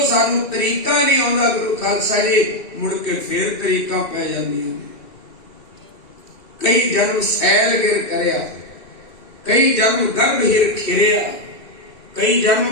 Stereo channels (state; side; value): late; right; 2.7 ms